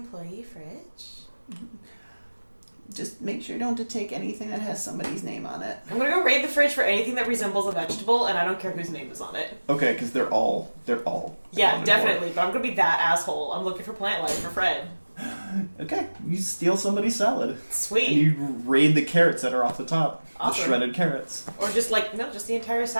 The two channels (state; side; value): inverted; both; correlation -1.00